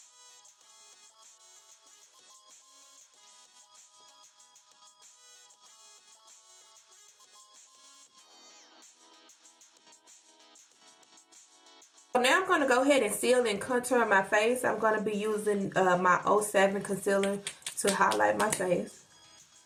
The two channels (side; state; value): both; identical; correlation 1.00